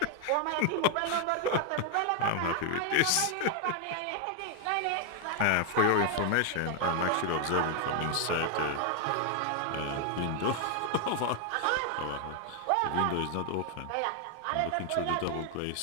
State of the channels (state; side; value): different; both; correlation 0.00